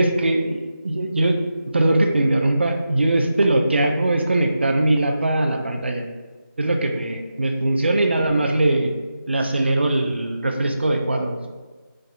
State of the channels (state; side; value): inverted; both; correlation -0.88